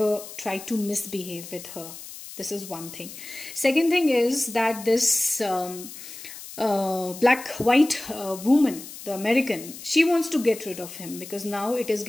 tried to misbehave with her. This is one thing. Second thing is that this black-white woman, the American, she wants to get rid of him because now it is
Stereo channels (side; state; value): left; noise; hiss, 13 dB below the sound